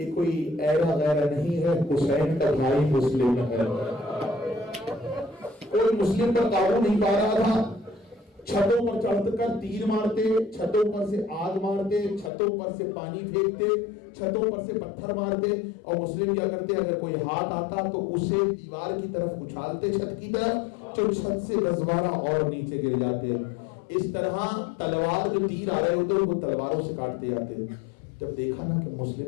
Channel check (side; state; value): right; drops out; at 12.3 s